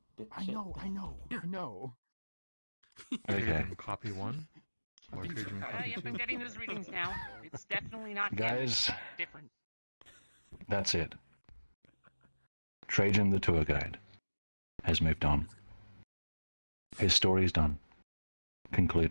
I know. Okay. Copy 1? Or Treijim copy Yep, 2? I'm getting those readings now. It's definitely not him. Guys. It's different. That's it. Treijim, the tour guide, has moved on. His story is done.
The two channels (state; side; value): inverted; both; correlation -1.00